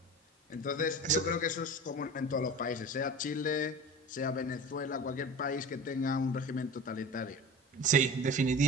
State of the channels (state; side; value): normal; both; correlation 0.35